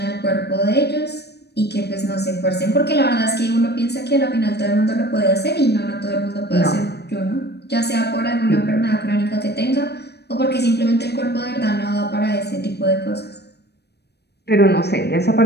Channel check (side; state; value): right; late; 0.48 ms